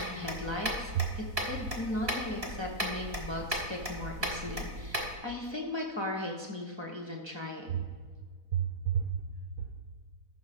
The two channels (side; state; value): left; late; 4.0 ms